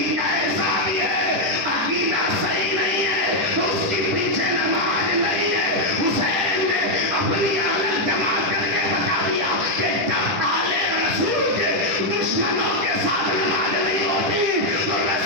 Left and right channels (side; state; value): left; late; 10 ms